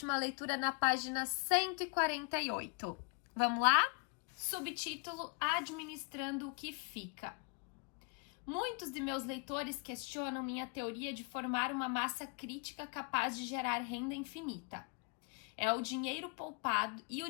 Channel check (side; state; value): right; quieter; 36.7 dB